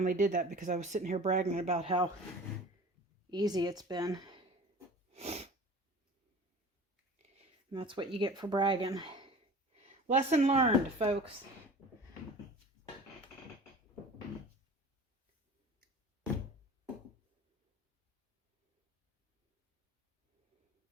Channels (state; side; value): normal; both; correlation 0.40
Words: did that because I was sitting here bragging about how easy it's been. And that's what you get for bragging. Lesson learned, folks.